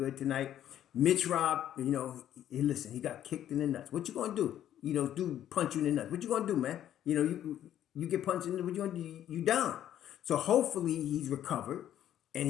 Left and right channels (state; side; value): quieter; right; 11.2 dB